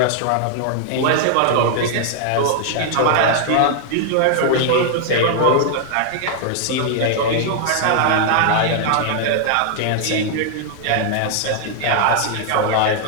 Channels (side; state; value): both; different; correlation 0.00